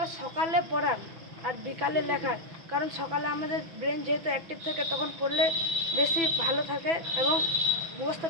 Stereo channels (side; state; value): left; late; 6.0 ms